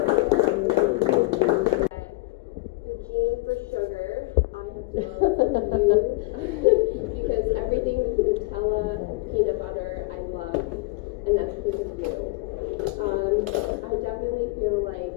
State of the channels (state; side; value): quieter; right; 23.3 dB